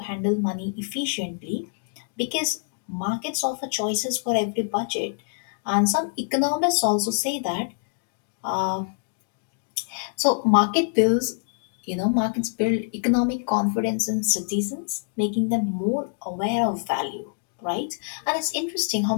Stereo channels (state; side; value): silent; right; digital silence